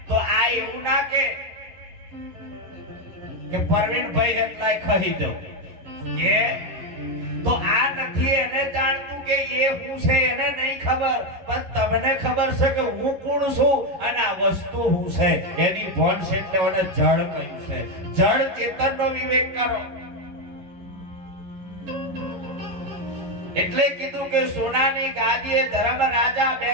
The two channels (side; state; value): left; late; 11 ms